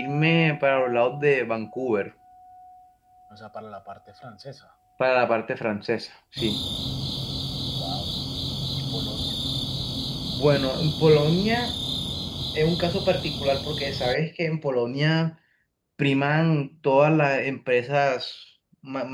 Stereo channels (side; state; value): both; identical; correlation 1.00